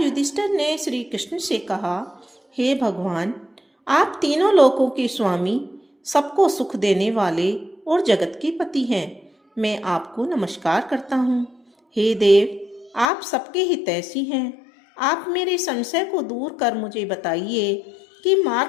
युधिष्ठिर ने श्री कृष्ण से कहा, हे भगवान, आप तीनों लोकों के स्वामी, सबको सुख देने वाले और जगत के पति हैं। मैं आपको नमस्कार करता हूँ। हे देव, आप सबके हितैषी हैं। आप मेरे संशय को दूर कर मुझे बताइए कि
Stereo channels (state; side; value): drops out; right; at 13.1 s